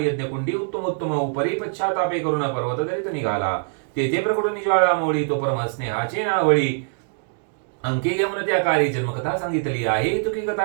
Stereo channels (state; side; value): silent; left; digital silence